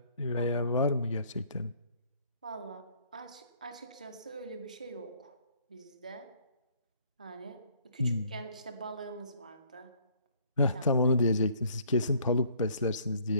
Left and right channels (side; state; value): both; inverted; correlation -0.60